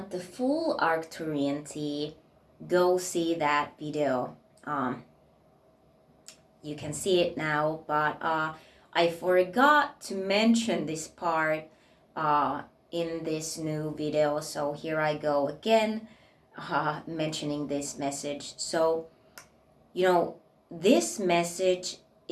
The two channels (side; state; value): both; identical; correlation 1.00